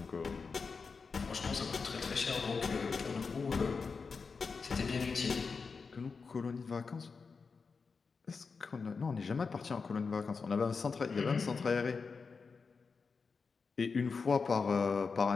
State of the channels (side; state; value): right; quieter; 4.9 dB